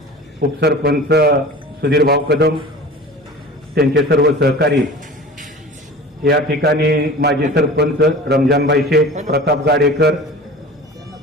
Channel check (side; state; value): both; normal; correlation 0.38